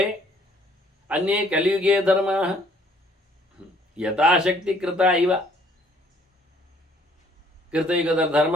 ಅನ್ಯೇ ಕಲಿಯುಗೇ ಧರ್ಮ ಯಥಾಶಕ್ತಿ ಕೃತ ಇವ. ಕೃತಯುಗದ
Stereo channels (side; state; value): both; normal; correlation 0.61